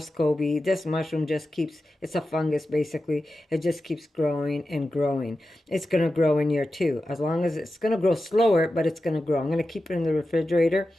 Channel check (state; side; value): normal; both; correlation 0.92